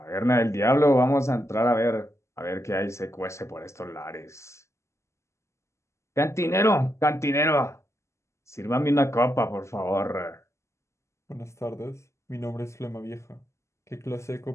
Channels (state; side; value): late; right; 0.13 ms